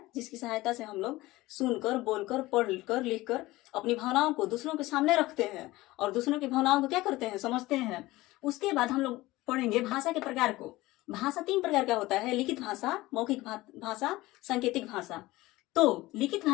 जिसकी सहायता से हम लोग सुनकर, बोलकर, पढ़कर, लिखकर अपनी भावनाओं को दूसरों के सामने रखते हैं और दूसरों की भावनाओं को क्या करते हैं, समझते हैं। उसके बाद हम लोग पढ़ेंगे भाषा के प्रकार को। भाषा 3 प्रकार का होता है, लिखित भाषा, मौखिक भाषा, सांकेतिक भाषा। तो लिखित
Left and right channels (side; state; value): right; quieter; 18.8 dB